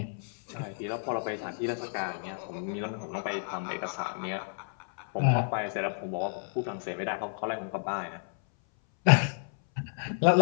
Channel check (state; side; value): silent; right; 57 dB below the other